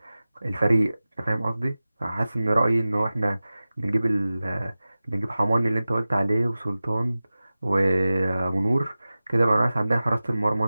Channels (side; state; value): both; inverted; correlation -0.96